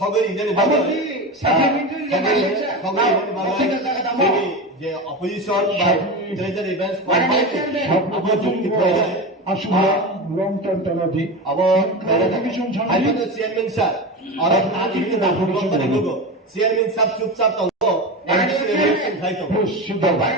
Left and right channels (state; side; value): normal; both; correlation 0.23